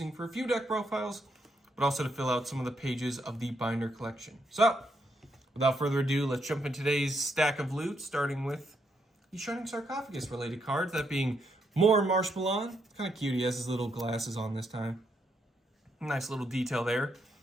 for a few deck profiles, but also to fill out some of the pages of the binder collection. So, without further ado, let's jump into today's stack of loot, starting with the Shining Sarcophagus related cards, that being more Marshmallow. Kind of cute, he has his little glasses on this time. Nice little detail there.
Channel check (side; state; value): both; normal; correlation 0.77